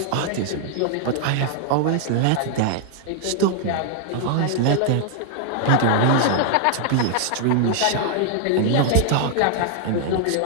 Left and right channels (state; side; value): different; both; correlation 0.00